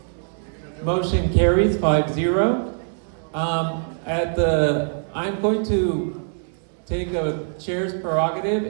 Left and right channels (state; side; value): silent; left; digital silence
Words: Motion carries 5-0. I'm going to take a chair's prerogative